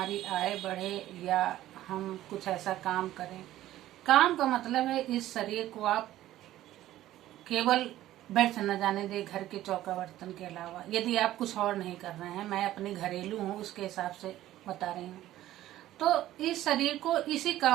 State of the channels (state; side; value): quieter; left; 14.2 dB